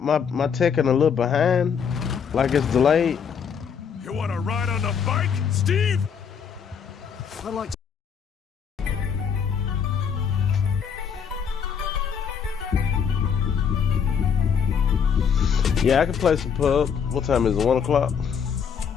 Tekken a little behind? Like it's delayed? You want to ride on the bike, Steve? I'd like to Yeah, I can play some pub. What time is it? 1 o'clock?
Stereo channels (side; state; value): right; quieter; 7.0 dB